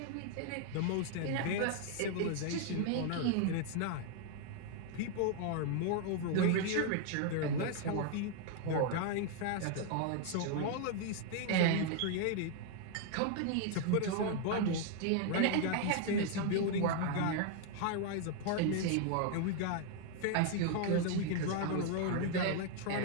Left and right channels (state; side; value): different; both; correlation 0.00